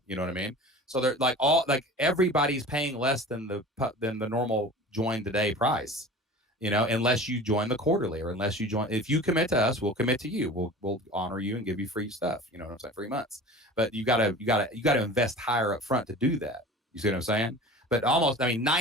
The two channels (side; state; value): both; normal; correlation 0.38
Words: You know what I mean? So they're everybody's paying less than the normal join today price. Unless you join the quarterly, or unless you join, if you commit to us, we'll commit to you. We'll honor you and give you free stuff. You know what I'm saying? 3 months, but you gotta invest higher up front to do that. You see what I'm saying? But